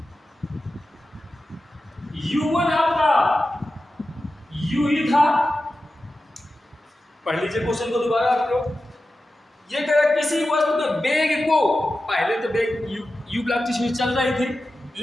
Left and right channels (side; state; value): both; normal; correlation 0.93